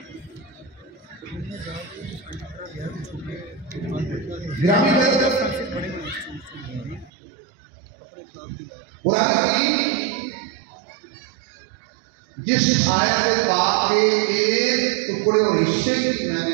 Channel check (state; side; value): drops out; left; at 7.1 s